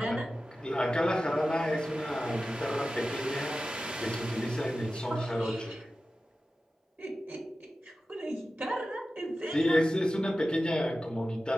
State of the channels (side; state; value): both; normal; correlation 0.94